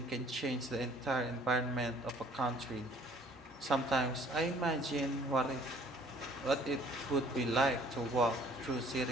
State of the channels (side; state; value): both; normal; correlation 0.56